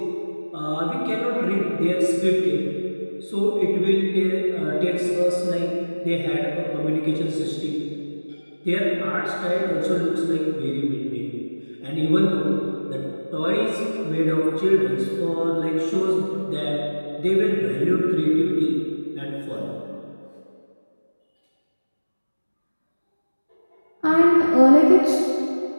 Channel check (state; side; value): inverted; both; correlation -1.00